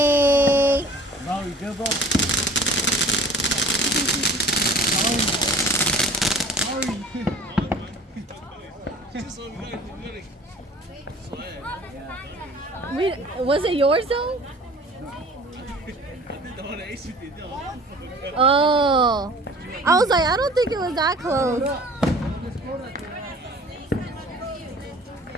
Now you give up. Was it yours though? Oh. I was like, I don't think it was that close.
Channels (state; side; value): normal; both; correlation 0.47